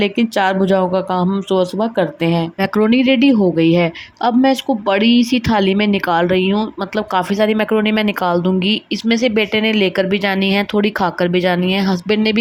4 भुजाओं का काम हम सुबह सुबह करते हैं। मैक्रोनी रेडी हो गई है। अब मैं इसको बड़ी सी थाली में निकाल रही हूँ, मतलब काफ़ी सारी मैक्रोनी मैं निकाल दूंगी। इसमें से बेटे ने लेकर भी जानी है, थोड़ी खाकर भी जानी है, हस्बैंड ने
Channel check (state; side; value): identical; both; correlation 1.00